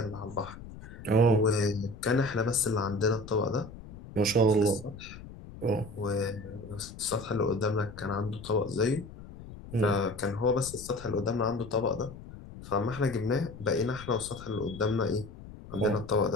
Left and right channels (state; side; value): noise; left; rumble, 15 dB below the sound